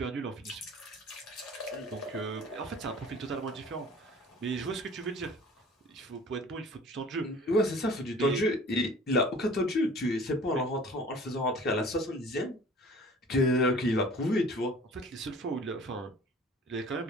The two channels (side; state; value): both; normal; correlation 0.47